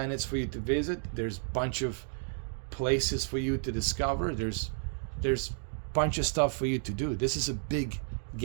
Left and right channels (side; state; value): left; silent; 56 dB below the other